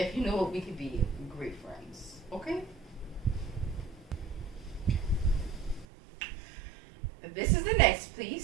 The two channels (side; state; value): left; drops out; at 5.9 s